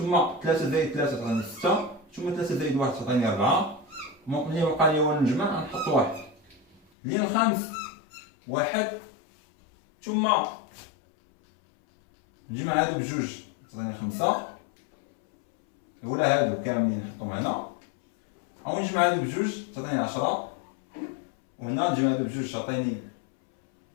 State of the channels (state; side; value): drops out; right; at 6.8 s